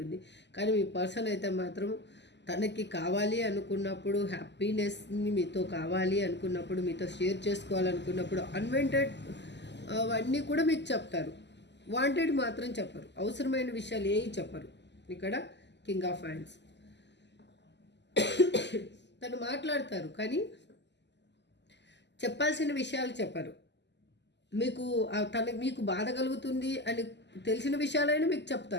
కానీ మీ పర్సన్ అయితే మాత్రం తనకి కావాలి అనుకున్నప్పుడు, హ్యాపీనెస్ని మీతో కావాలి అనుకున్నప్పుడు, మీతో షేర్ చేసుకోవాలనుకున్నప్పుడు అన్వాంటెడ్ అవన్నీ కూడా మీకు చెప్తారు. వాంటెడ్ మాత్రం చెప్పరు. అవసరమైన విషయాలు ఏవి చెప్పరు. ఇక్కడ కింగ్ ఆఫ్ హ్యాండ్స్. తను మాట్లాడతారు కానీ చెప్పాల్సిన విషయాలు చెప్పరు. మీకు బాధ కలుగుతుంది అని తెలిసిన విషయాలైనా మీకు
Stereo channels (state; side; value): late; right; 0.51 ms